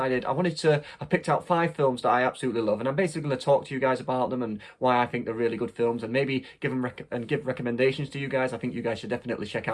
I picked out 5 films that I absolutely love, and I'm basically going to talk to you guys about them and why I think they're really good films, and maybe give recommendations to you guys. I think you guys should definitely check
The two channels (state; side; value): identical; both; correlation 1.00